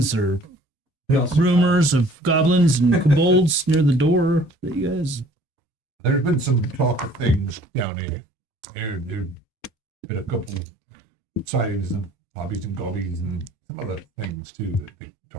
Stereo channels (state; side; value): normal; both; correlation 0.54